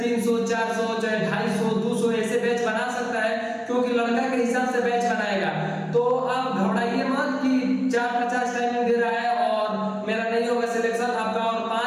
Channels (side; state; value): both; identical; correlation 1.00